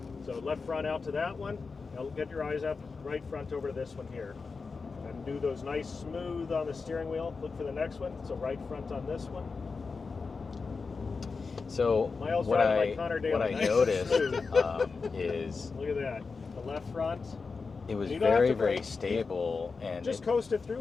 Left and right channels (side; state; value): right; quieter; 4.6 dB